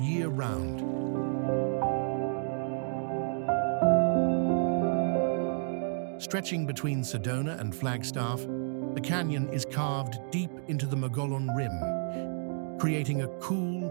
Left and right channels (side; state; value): left; silent; digital silence